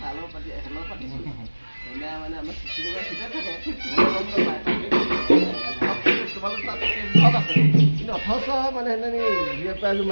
চালৰ পাতি এখেলৰ পাতিছোঁ এনে মানে আমাৰ চিঠি দিব ভিতৰত থাকে তোমালোক তাত আছে কিন্তু অথচ মানে সেইদিনা দুই প্ৰাইজো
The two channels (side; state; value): both; inverted; correlation -1.00